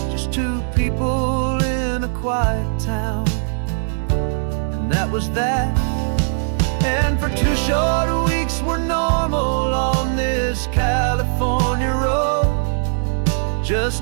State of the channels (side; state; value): left; silent; digital silence